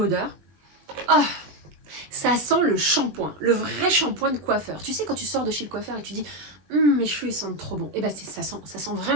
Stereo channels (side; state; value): left; late; 20 ms